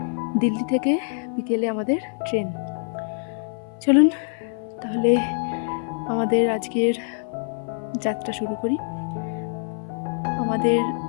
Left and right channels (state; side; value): silent; right; 56 dB below the other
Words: দিল্লি থেকে বিকেলে আমাদের ট্রেন। চলুন তাহলে আমাদের আজকের যাত্রা শুরু করি। আমাদের